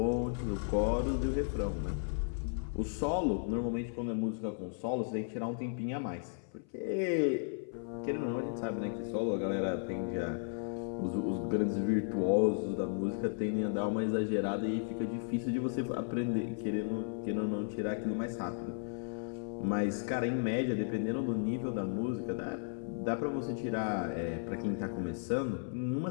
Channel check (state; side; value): silent; right; 55 dB below the other